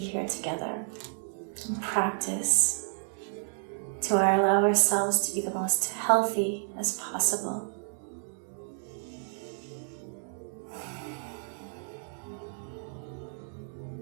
together and practice to allow ourselves to be the most healthy as possible.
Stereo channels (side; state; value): left; silent; digital silence